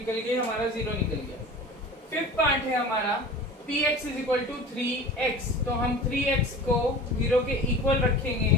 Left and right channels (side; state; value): both; normal; correlation 0.38